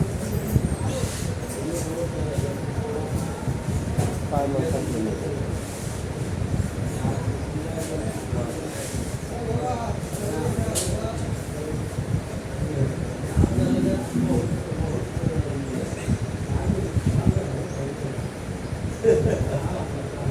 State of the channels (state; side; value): identical; both; correlation 1.00